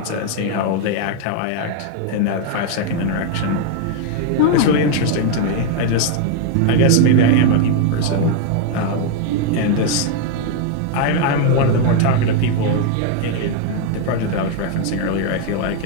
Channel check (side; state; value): both; different; correlation 0.00